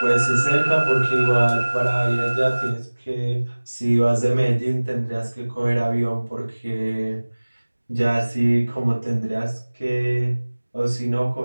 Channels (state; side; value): inverted; both; correlation -1.00